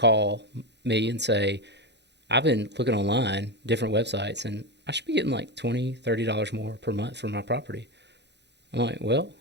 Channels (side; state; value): left; late; 0.50 ms